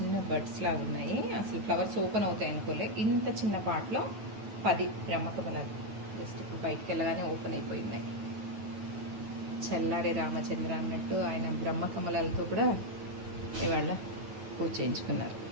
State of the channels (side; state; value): left; late; 9.2 ms